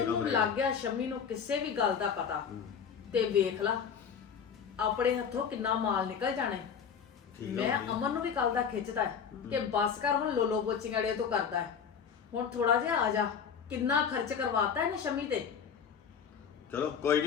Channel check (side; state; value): right; quieter; 7.0 dB